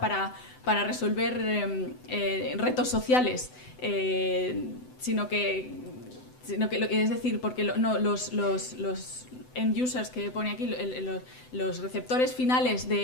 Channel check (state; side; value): late; right; 7.9 ms